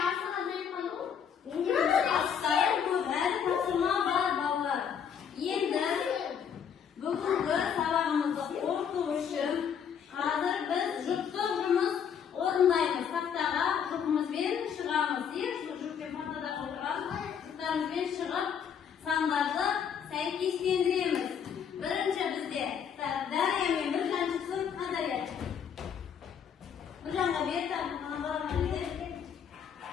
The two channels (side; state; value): right; quieter; 7.7 dB